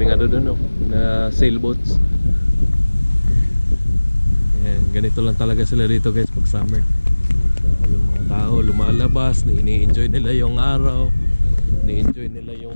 ano doon, no, na sailboats. Yan, ganito lang talaga sila dito guys pag summer. So, yung mga tao lumalabas, ini-enjoy nila yung araw, ini-enjoy nila yung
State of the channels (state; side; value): inverted; both; correlation -1.00